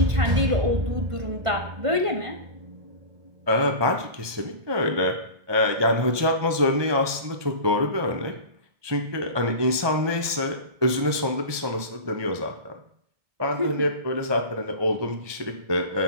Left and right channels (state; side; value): late; left; 1.2 ms